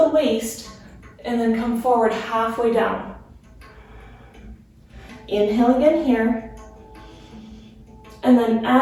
waist, and then come forward halfway down. Inhale again here. And then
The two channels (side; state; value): both; identical; correlation 1.00